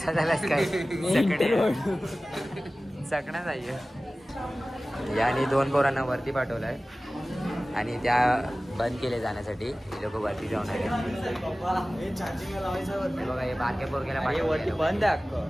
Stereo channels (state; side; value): normal; both; correlation 0.97